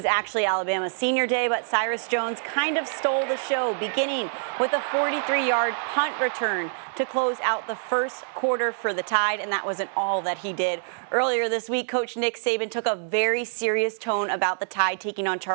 actually Alabama's senior day, but Cyrus Jones kind of stole the show, beginning with a 43-yard punt return to close out the first quarter for the Tide, and that wasn't all that he did. Earlier this week, Coach Nick Saban took a very serious tone about the Tide taking on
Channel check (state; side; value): silent; left; digital silence